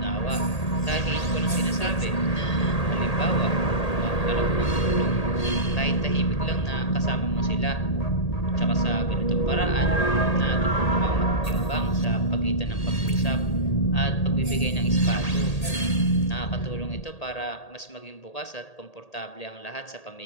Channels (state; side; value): late; right; 1.8 ms